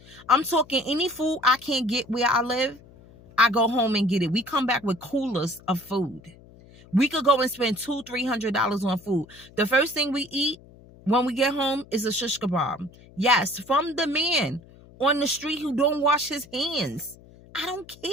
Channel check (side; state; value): left; noise; hum, 23 dB below the sound